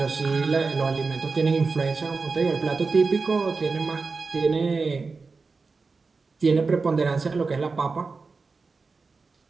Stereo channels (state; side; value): quieter; left; 4.3 dB